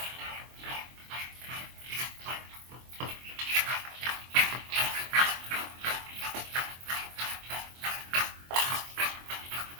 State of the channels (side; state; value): left; late; 24 ms